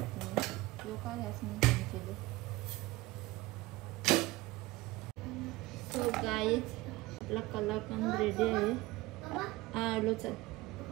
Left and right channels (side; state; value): left; quieter; 19.9 dB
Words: तो का गॅस मी कमी केले. सो गाईज आपला कलाकंद रेडी आहे. आलो चल.